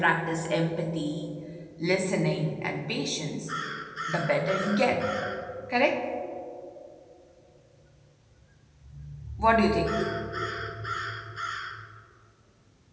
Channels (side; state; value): both; identical; correlation 1.00